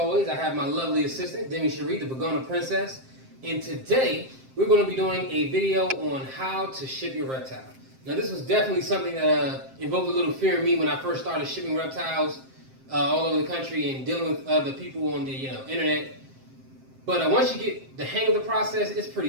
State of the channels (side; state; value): left; late; 7.6 ms